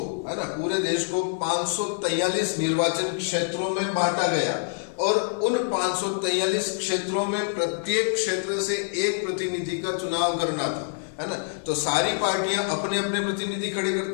है ना, पूरे देश को 543 निर्वाचन क्षेत्रों में बांटा गया, और उन 543 क्षेत्रों में प्रत्येक क्षेत्र से एक प्रतिनिधि का चुनाव करना था, है ना। तो सारी पार्टियां अपने अपने प्रतिनिधि खड़े करते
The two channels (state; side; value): silent; right; digital silence